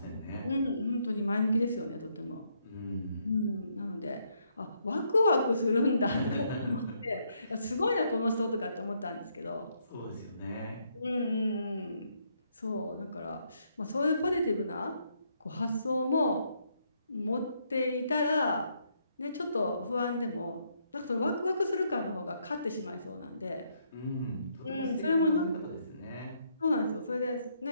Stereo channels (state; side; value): inverted; both; correlation -0.74